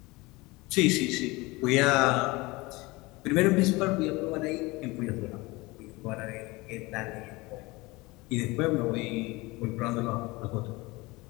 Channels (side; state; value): right; quieter; 22.8 dB